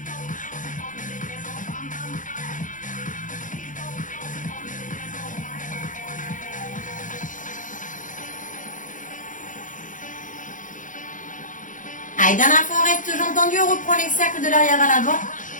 Allez, dernière fois, on reste jambes tendues, on reprend les cercles de l'arrière à l'avant.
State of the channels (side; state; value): right; late; 0.38 ms